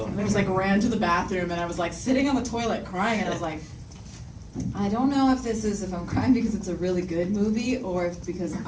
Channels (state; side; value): identical; both; correlation 1.00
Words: I just ran to the bathroom, and I was sitting on the toilet crying, and I was like, I don't know if I'm crying because it's a really good movie or if because